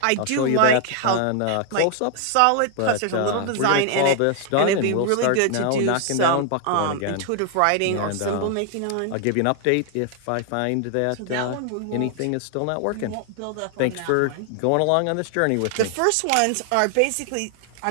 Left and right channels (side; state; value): both; different; correlation 0.00